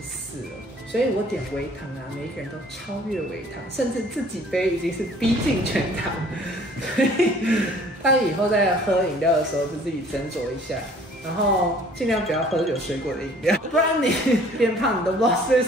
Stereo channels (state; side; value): normal; both; correlation 0.54